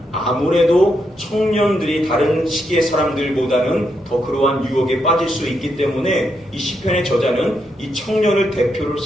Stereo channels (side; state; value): both; normal; correlation 0.81